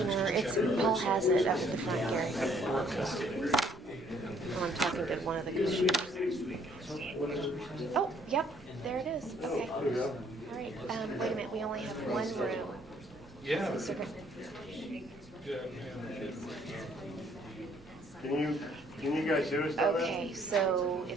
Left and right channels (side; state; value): both; normal; correlation 0.64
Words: Paul has it up at the front, Gary. Oh, I'm talking to one of the commissioners. Oh, yep, there it is. Okay. All right, wait a minute, we only have one room. Yeah. Can you guys hear us down there? Okay, so